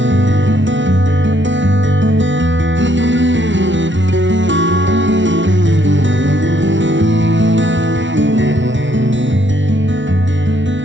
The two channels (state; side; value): late; left; 0.55 ms